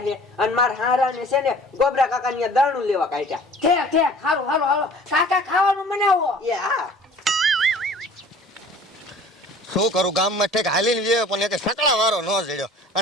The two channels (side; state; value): both; normal; correlation 0.47